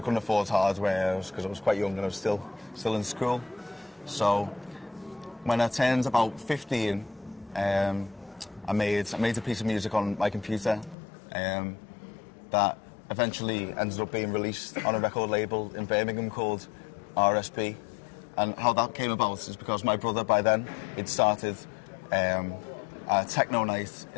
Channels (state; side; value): drops out; right; at 11.0 s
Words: afford hardware because I was quite young and I was still in school. So when I turned about 15, I made a piece of music on my computer that eventually ended up being released on a record label in Birmingham called RSB. And how that came about is because my brother, by then, he'd started a techno night